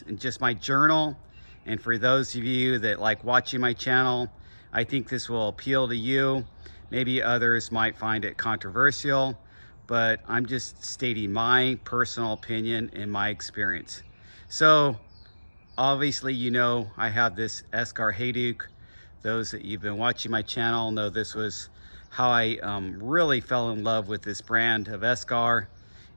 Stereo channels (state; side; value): inverted; both; correlation -1.00